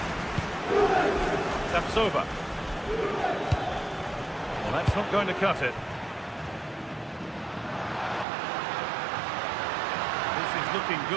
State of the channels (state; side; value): drops out; left; at 8.2 s